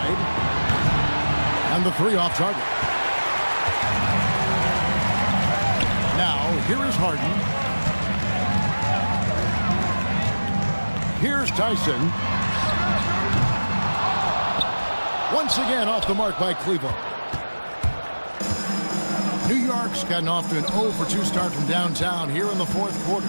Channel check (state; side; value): inverted; both; correlation -1.00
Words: And the 3 off target. Now, here is Harden. Here's Tyson. Once again off the mark by Cleveland. New York's gotten off to an 0 for 2 start from downtown here in the fourth quarter.